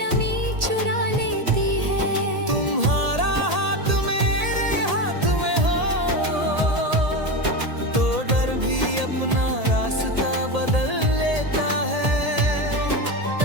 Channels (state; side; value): late; left; 1.8 ms